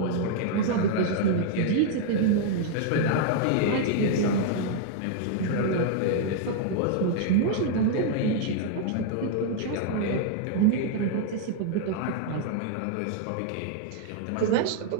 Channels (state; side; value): different; both; correlation 0.00